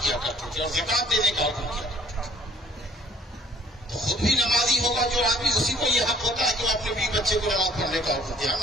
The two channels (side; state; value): both; normal; correlation 0.56